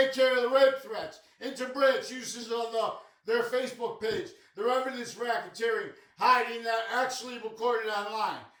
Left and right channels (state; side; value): identical; both; correlation 1.00